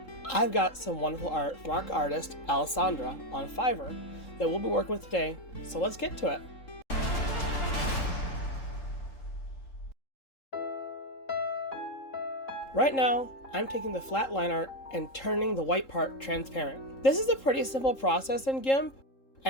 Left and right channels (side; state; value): right; late; 3.7 ms